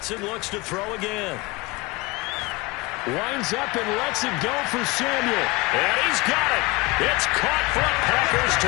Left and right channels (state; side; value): quieter; right; 23.1 dB